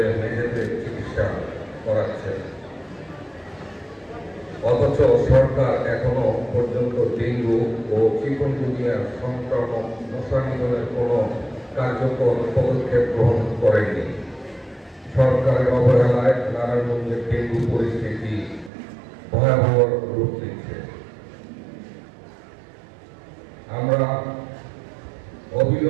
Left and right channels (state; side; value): drops out; left; at 18.7 s